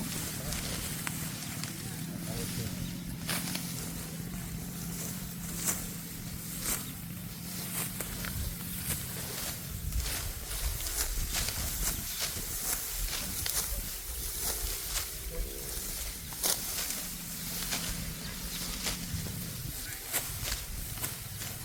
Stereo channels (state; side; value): identical; both; correlation 1.00